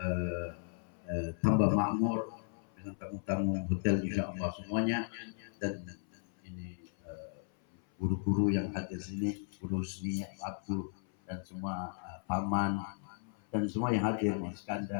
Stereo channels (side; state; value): right; silent; 54 dB below the other